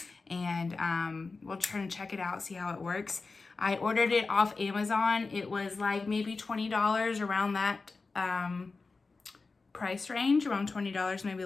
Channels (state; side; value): quieter; right; 4.0 dB